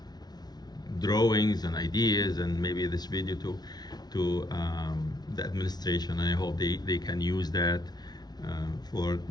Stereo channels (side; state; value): right; late; 0.19 ms